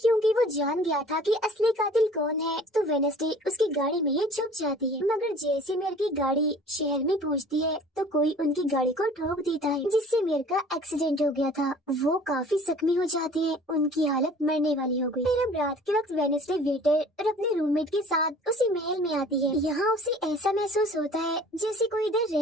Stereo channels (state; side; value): normal; both; correlation 0.49